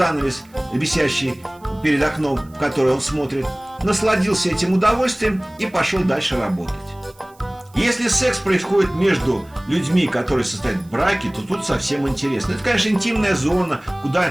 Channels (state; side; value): noise; right; hiss, 30 dB below the sound